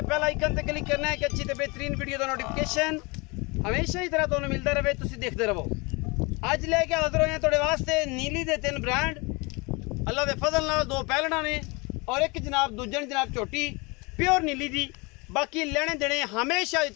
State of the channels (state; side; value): quieter; right; 27.3 dB